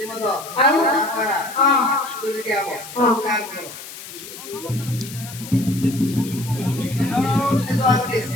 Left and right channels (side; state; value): left; noise; hiss, 13 dB below the sound